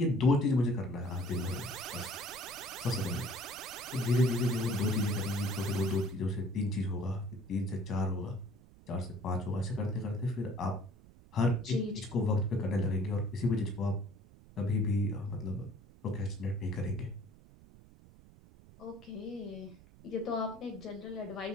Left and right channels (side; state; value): right; noise; rumble, 22 dB below the sound